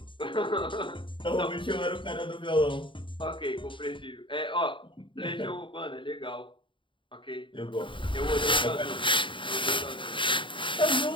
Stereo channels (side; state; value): right; late; 0.24 ms